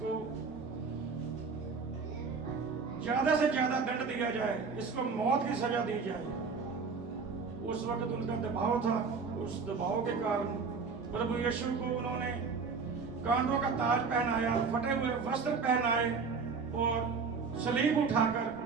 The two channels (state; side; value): quieter; left; 5.0 dB